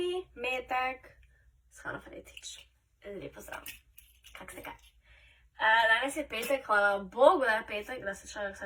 metek s Hano Fretič. Lep pozdrav. Kak ste kaj? Danes je petek, hvala Bogu, da je petek, da se človek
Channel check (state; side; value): identical; both; correlation 1.00